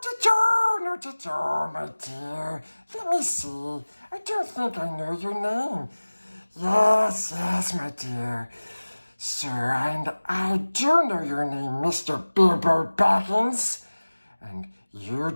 at all, my dear. Let me see. I don't think I know your name. Yes, my dear. Sir, and I do know your name, Mr. Bilbo Baggins. And you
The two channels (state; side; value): inverted; both; correlation -1.00